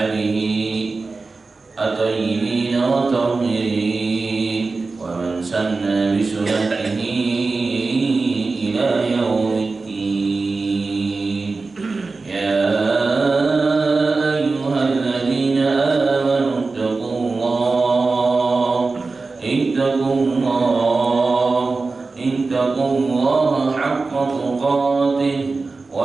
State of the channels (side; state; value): left; quieter; 3.9 dB